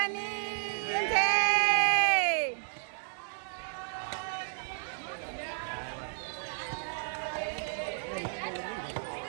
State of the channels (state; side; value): silent; left; digital silence